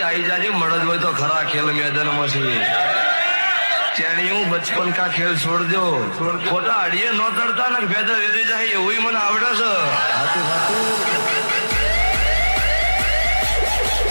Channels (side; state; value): both; inverted; correlation -1.00